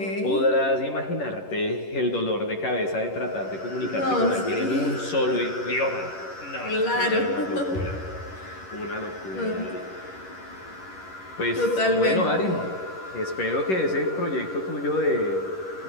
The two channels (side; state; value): right; late; 11 ms